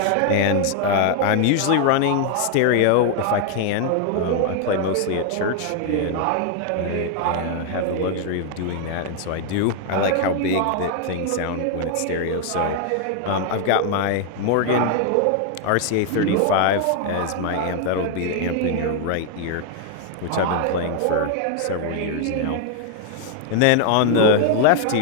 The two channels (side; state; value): both; different; correlation 0.00